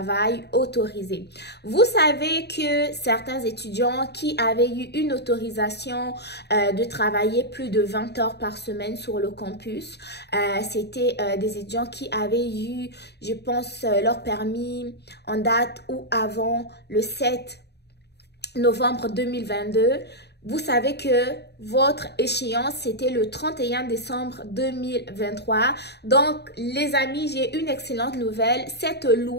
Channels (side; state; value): right; late; 0.48 ms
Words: autorisées. Vous savez que certains étudiants qui avaient eu une autorisation de travailler plus de 20 heures par semaine sur le campus, c'était des étudiants qui avaient eu, je pense, leur permis en date ou avant le 7 novembre 2022. Vous savez que votre échéance, c'était le 31 décembre 2023. Donc, les amis, j'ai une excellente nouvelle. Cette